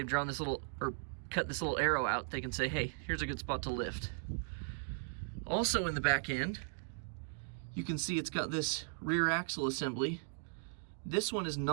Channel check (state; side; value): silent; left; digital silence